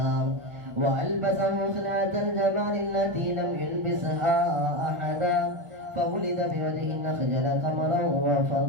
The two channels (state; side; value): late; left; 1.0 ms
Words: وألبسه خلعة الجمال التي لم يلبسها أحدا فولد بوجه النخجل قمرا